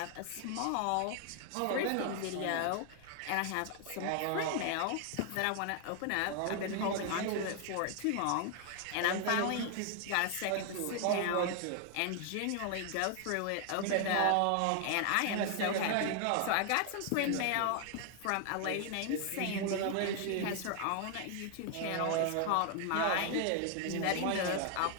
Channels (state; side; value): different; both; correlation 0.00